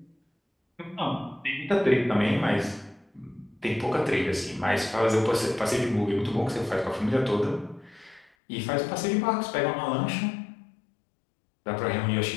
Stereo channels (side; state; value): right; drops out; at 8.3 s